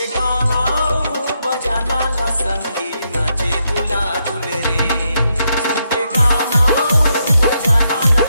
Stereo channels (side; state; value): both; inverted; correlation -0.80